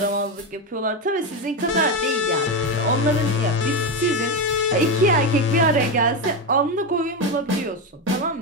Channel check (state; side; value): normal; both; correlation 0.12